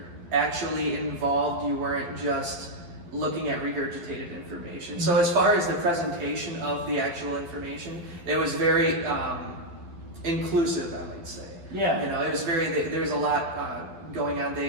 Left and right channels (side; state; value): left; late; 12 ms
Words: actually involved, you weren't just looking at regurgitated information. So as far as the presentation of the actual information, it was very inclusive, I would say. Yeah. It was there's a lot going on.